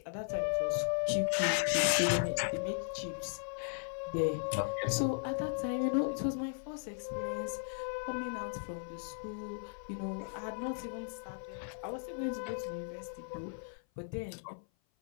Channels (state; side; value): silent; right; 53 dB below the other